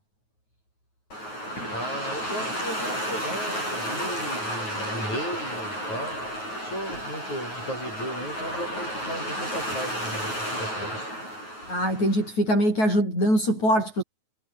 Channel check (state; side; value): late; right; 9.3 ms